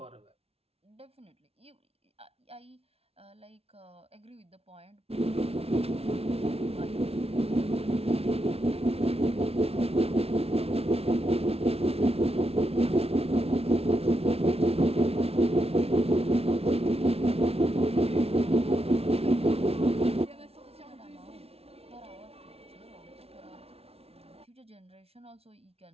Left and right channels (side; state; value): left; late; 0.29 ms